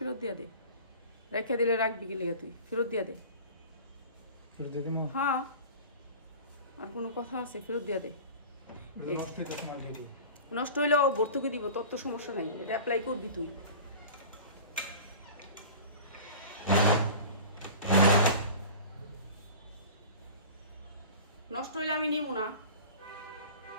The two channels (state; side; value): inverted; both; correlation -0.38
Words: দিয়ে দে, রেখে দিলে রাখবি কি লিগা তুই? ফেরত দিয়ে দে। ফেরত দিয়ে দিমু? হ্যাঁ, আর কোনো কথা আছে? ফেরত দিয়ে দে। নষ্ট হয়ে যাচ্ছে মাল দিয়ে দিই। নষ্ট হইলেও ভর্তুকি দিব, তোর তো সমস্যা নাই, এটা অ্যাপ্লাই করবি তুই। নষ্ট হইলে আমি নিব না।